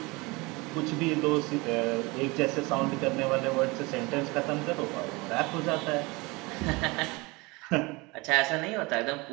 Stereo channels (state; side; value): quieter; left; 24.9 dB